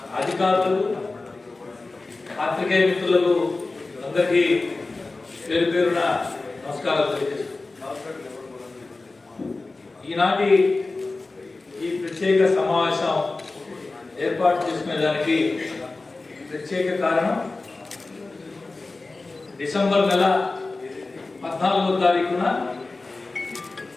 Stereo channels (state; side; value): quieter; right; 3.4 dB